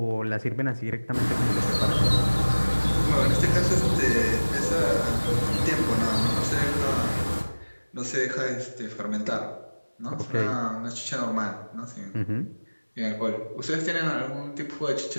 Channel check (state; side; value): inverted; both; correlation -1.00